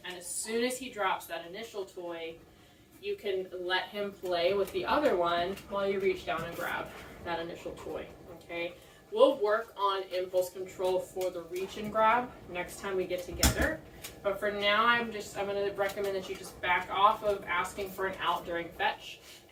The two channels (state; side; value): identical; both; correlation 1.00